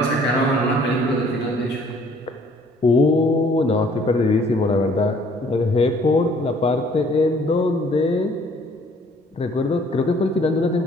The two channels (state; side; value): normal; both; correlation 0.59